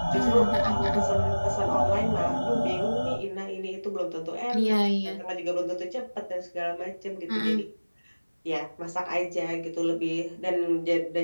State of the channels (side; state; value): both; inverted; correlation -1.00